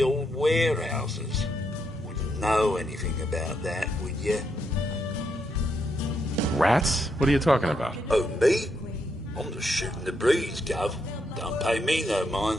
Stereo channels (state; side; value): normal; both; correlation 0.79